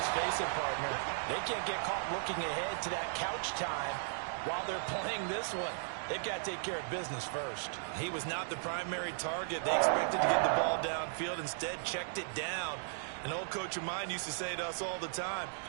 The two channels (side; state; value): left; silent; digital silence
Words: face it, partner. They can't get caught looking ahead to that couch time while they're playing this one. They've got to take care of business first. He was not the primary target. They expected to get the ball downfield, instead checked it down. An old coach of mine used to say to us all the time,